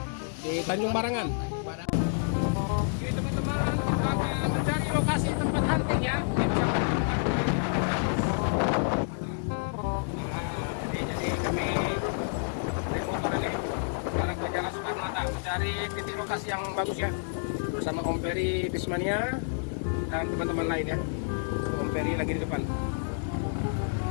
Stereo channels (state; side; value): silent; right; digital silence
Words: Di Tanjung Barangan. Oke, teman-teman, kita akan mencari lokasi tempat hunting ya. Jadi kami naik motor ini sekarang ke Jalan Soekarno-Hatta mencari titik lokasi yang bagus ya. Bersama Om Peri Bismania dan teman-teman lain ya. Om Peri lagi di depan.